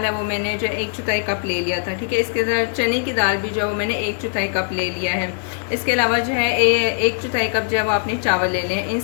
है वो मैंने जो 1/4 कप ले लिया था, ठीक है। इसके साथ चने की दाल भी जो है मैंने 1/4 कप ले लिया है। इसके अलावा जो है 1/4 कप जो है वो आपने चावल ले लें। इन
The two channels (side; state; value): right; silent; digital silence